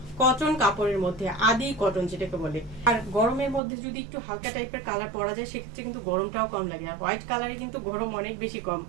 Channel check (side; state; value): left; drops out; at 3.6 s